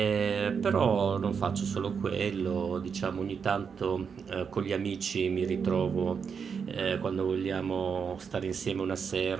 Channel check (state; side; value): quieter; left; 6.3 dB